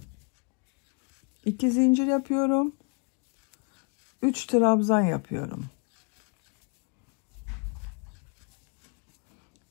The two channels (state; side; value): quieter; right; 36.7 dB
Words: 2 zincir yapıyorum. 3 trabzan yapıyorum.